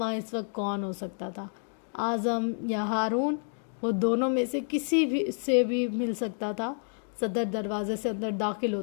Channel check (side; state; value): right; silent; 58 dB below the other